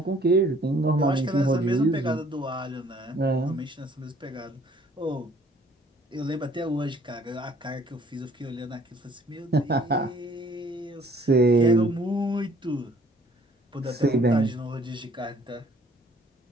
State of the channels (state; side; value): normal; both; correlation 0.58